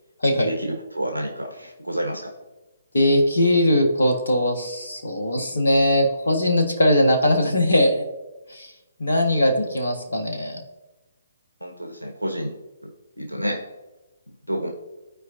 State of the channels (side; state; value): both; inverted; correlation -0.79